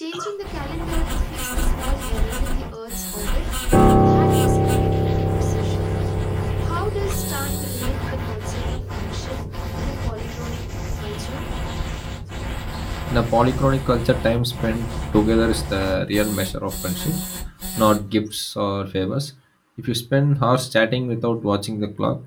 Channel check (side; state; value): both; identical; correlation 1.00